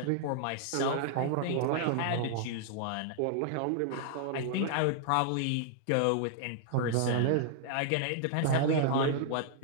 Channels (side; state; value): both; different; correlation -0.01